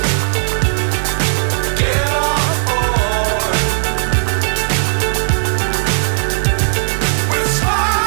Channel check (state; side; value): silent; left; 69 dB below the other